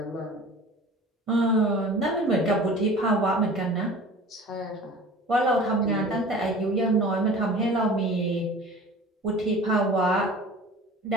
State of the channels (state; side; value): normal; both; correlation 0.42